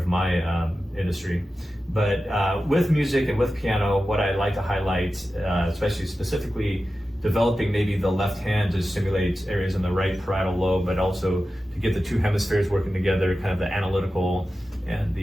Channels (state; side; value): normal; both; correlation 0.93